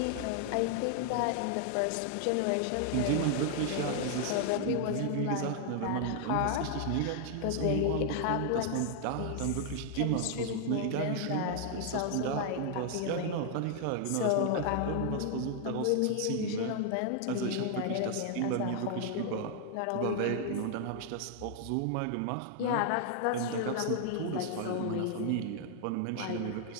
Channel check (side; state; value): both; different; correlation 0.00